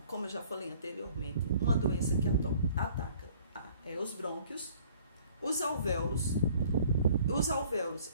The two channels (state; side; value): inverted; both; correlation -0.54